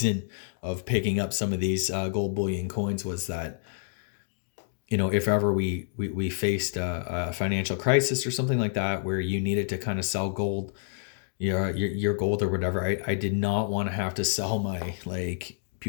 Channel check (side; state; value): right; silent; 59 dB below the other